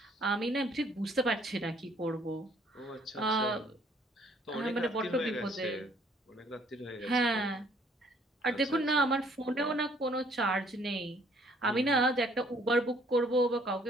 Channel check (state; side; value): normal; both; correlation 0.62